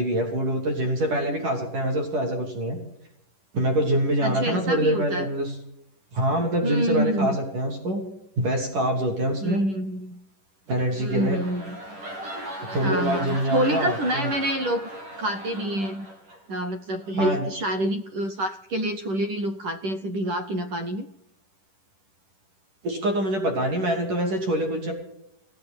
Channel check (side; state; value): left; late; 10 ms